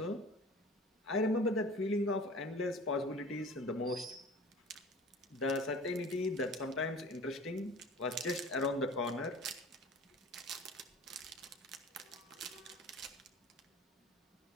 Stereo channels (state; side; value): normal; both; correlation 0.42